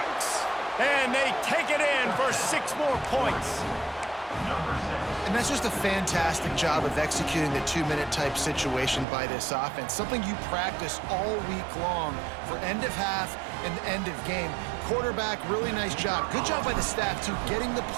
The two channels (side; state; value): left; drops out; at 9.1 s